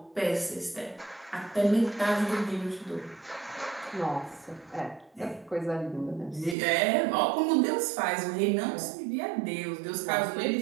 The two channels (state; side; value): drops out; left; at 6.6 s